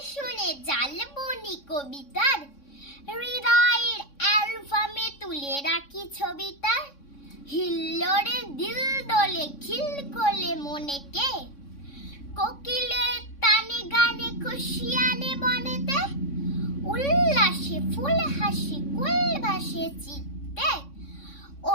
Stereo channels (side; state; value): right; late; 3.6 ms